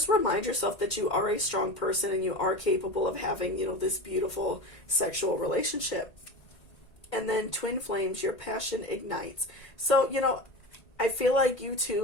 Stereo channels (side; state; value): right; late; 1.9 ms